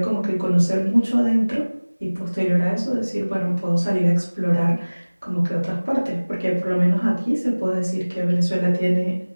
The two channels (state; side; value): inverted; both; correlation -1.00